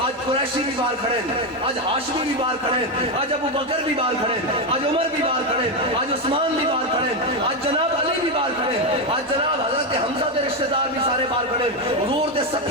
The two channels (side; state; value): both; normal; correlation 0.09